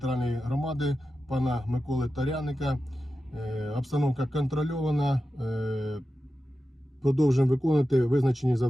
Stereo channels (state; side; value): normal; both; correlation 0.92